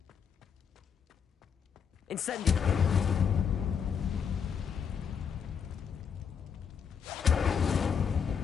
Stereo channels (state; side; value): quieter; right; 7.0 dB